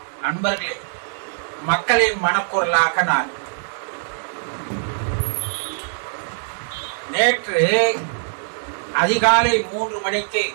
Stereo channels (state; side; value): silent; left; 61 dB below the other